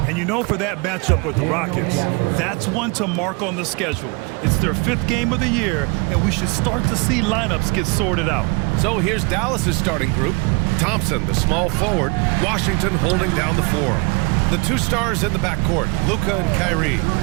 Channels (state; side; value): quieter; left; 29.3 dB